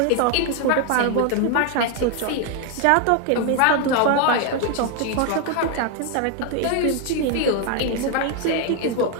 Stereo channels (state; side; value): different; both; correlation 0.01